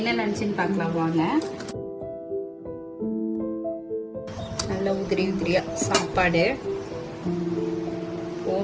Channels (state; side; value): identical; both; correlation 1.00